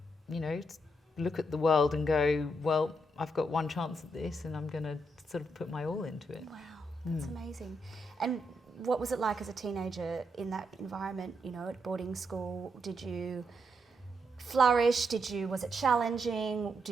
you know, look at the world and go, well, I've got one chance at this, and I'm going to sort of put my all into it. Wow, that's amazing. And what was it like as a teenager in that environment, you know, at boarding school? Did you flourish? Was it challenging?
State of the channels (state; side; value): normal; both; correlation 0.80